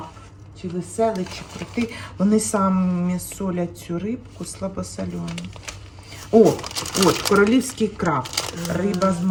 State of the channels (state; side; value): identical; both; correlation 1.00